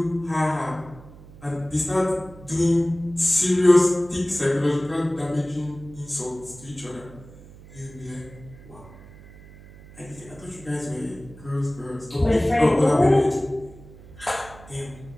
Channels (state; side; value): noise; right; hum, 20 dB below the sound